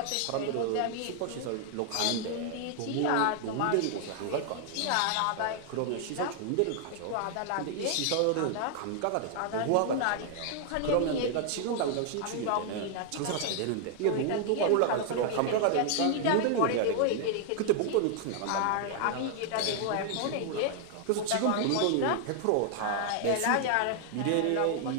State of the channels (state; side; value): different; both; correlation 0.00